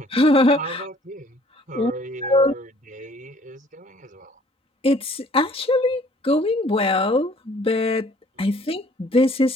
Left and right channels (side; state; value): both; normal; correlation 0.57